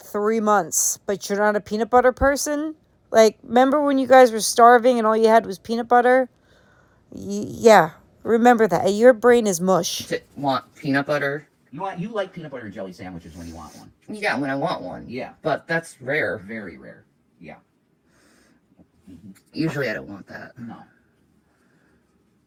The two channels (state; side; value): identical; both; correlation 1.00